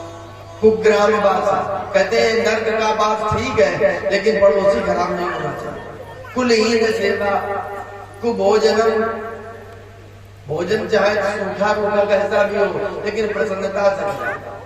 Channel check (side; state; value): both; identical; correlation 1.00